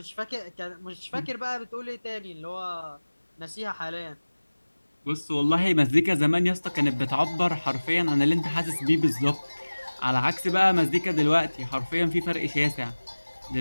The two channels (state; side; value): inverted; both; correlation -1.00